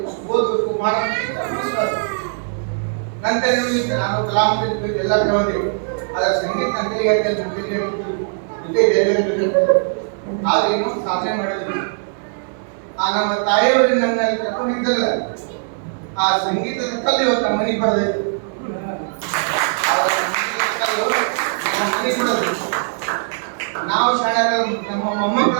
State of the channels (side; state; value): left; silent; digital silence